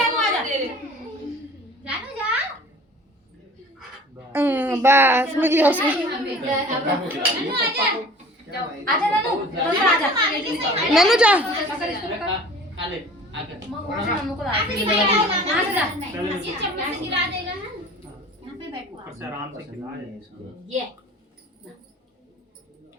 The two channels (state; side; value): normal; both; correlation 0.45